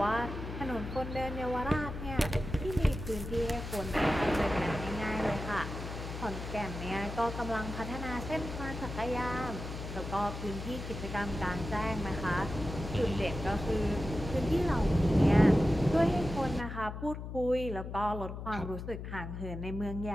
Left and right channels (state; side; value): noise; left; hum, 8 dB below the sound